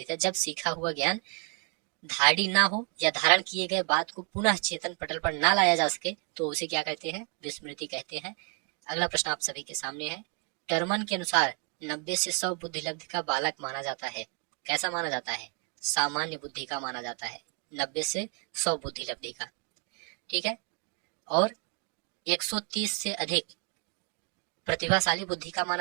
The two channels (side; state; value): left; quieter; 34.9 dB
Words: है। जब सीखा हुआ ज्ञान धारणी ना हो या धारण किए गए बात को पुनः चेतन पटल पर ना लाया जा सके तो उसे क्या कहते हैं? विस्मृति कहते हैं। अगला प्रश्न आप सभी के सामने है। टर्मन के अनुसार 90 से 100 बुद्धि लब्धि का बालक माना जाता है। कैसा माना जाता है? सामान्य बुद्धि का माना जाता है। 90 से 100 बुद्धि लब्धि का, ठीक है। और 130 से अधिक प्रतिभाशाली बुद्धि का